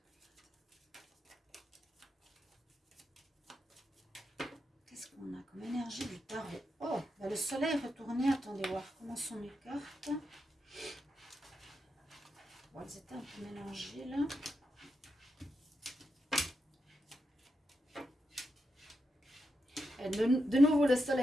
Qu'est-ce qu'on a comme énergie du tarot? Oh, bah le soleil est retourné. Attendez voir comment sont mes cartes. Bon, elles étaient un peu mélangées là. De nouveau, le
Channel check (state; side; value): normal; both; correlation 0.86